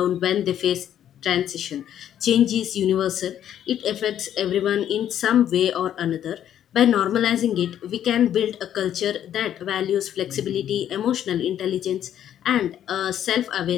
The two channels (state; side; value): quieter; right; 10.5 dB